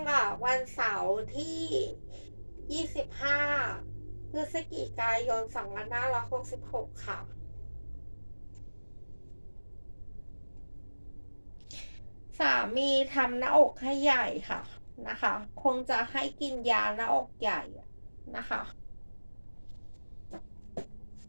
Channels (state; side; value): inverted; both; correlation -1.00